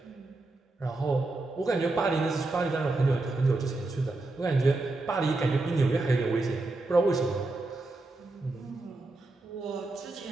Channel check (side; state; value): left; quieter; 3.1 dB